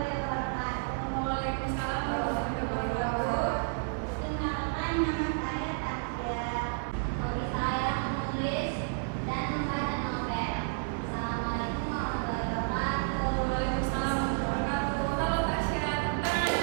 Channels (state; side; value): silent; left; digital silence